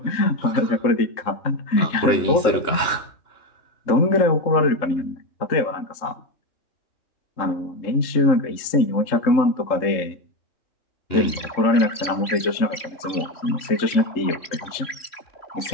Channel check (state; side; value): late; right; 3.7 ms